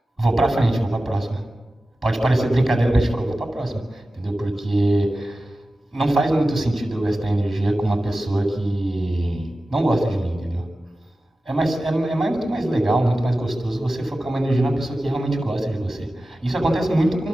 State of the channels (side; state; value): both; normal; correlation 0.95